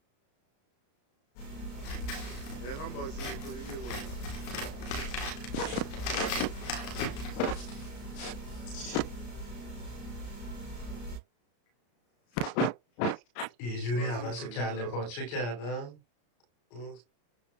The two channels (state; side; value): late; right; 33 ms